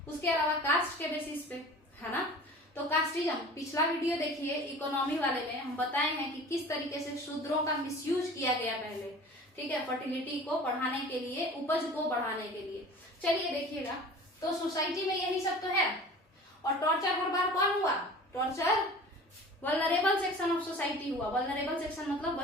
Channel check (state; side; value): normal; both; correlation 0.42